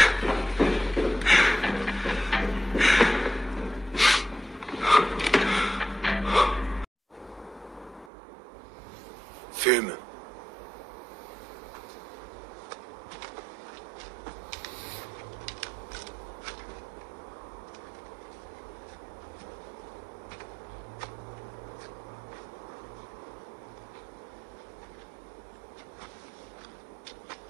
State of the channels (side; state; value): left; drops out; at 8.1 s